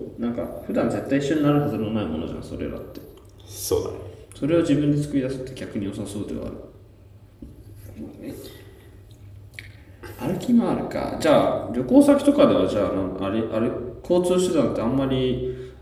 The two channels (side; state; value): both; identical; correlation 1.00